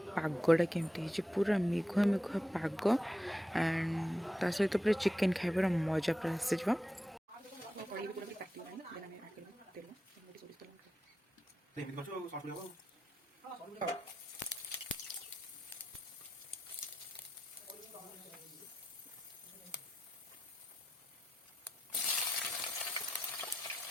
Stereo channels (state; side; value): normal; both; correlation 0.87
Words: केमती पूरा मेघुआ मेघुआ पाग एंड ता सहित पूरा चिकेन खाइबार मजा पूरा आसी।